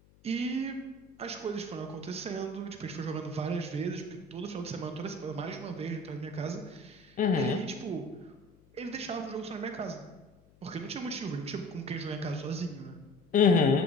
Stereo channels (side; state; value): left; noise; hum, 28 dB below the sound